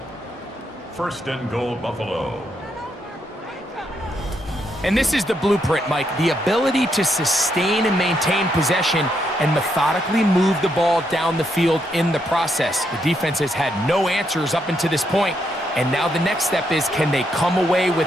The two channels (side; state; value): both; normal; correlation 0.78